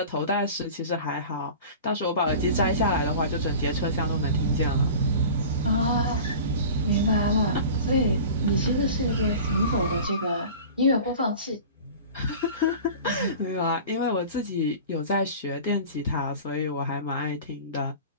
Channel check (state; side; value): inverted; both; correlation -0.38